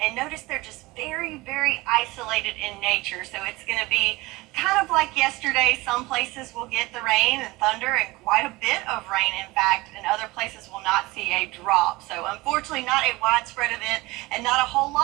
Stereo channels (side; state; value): left; quieter; 21.4 dB